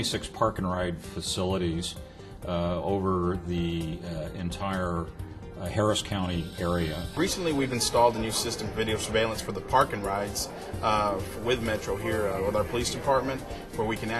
park and ride facilities over the entire Harris County area. Recently we've installed a new system of video surveillance for the park and rides with Metro here with our police department, where we can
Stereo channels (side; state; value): both; identical; correlation 1.00